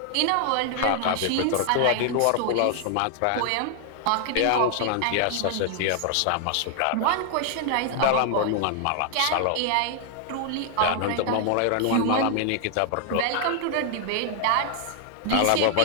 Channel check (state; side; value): different; both; correlation 0.00